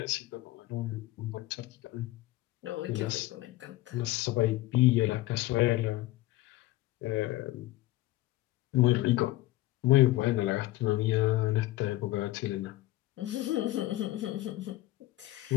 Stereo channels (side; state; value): right; quieter; 17.1 dB